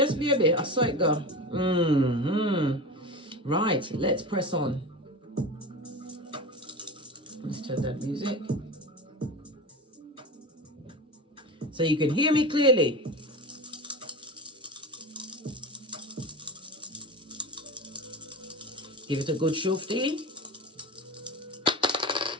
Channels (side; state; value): both; normal; correlation 0.28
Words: baby, I saw it go. Right, let's press on. Let's turn that music so you can hear me clearly. Give it a good shufty.